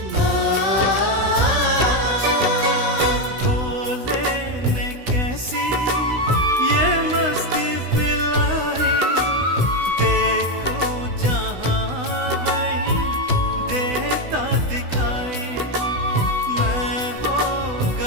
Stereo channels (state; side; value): late; left; 16 ms